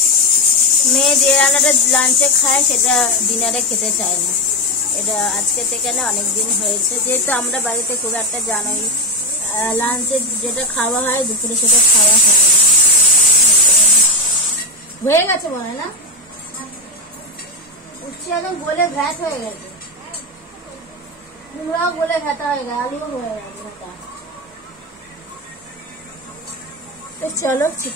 মেয়ে যে রান্নাটা লাঞ্চে খায় সেটা ডিনারে খেতে চায় না। এটা আজকে থেকে না অনেকদিন হয়েছে, যেহেতু আমরা বাড়িতে খুব একটা জানোই লাঞ্চে যেটা খাওয়া হয় দুপুরে সেটা খাওয়া হয় না। হয়ে গেছে মনে হয় না, উচ্ছে একদম গলে ভ্যাট হয়ে গেছে, কুমড়াও গলে ভেতা হয়ে গেছে, আলুও হয়ে গেছে। তো চলো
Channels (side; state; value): both; normal; correlation 0.11